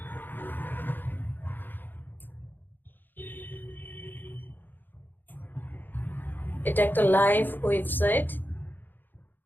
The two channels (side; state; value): right; late; 0.091 ms